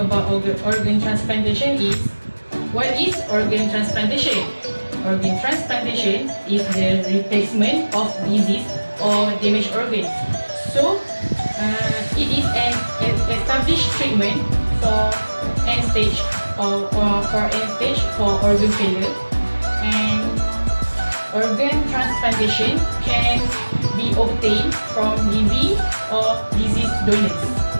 about organ transplantation is, what is organ transplantation? Organ transplantation is the replacement of diseased or damaged organs. So, it is an established treatment for end stage for organ failure, and organ transplantation can be obtained from living or deceased donors.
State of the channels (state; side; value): inverted; both; correlation -1.00